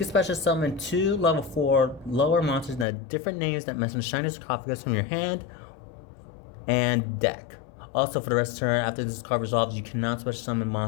special summon 2 level 4 lower monsters that have different names that mention Shiny Sarcophagus from your hand and deck. Also, for the rest of the turn, after this card resolves, you cannot special summon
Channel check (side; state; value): right; drops out; at 2.9 s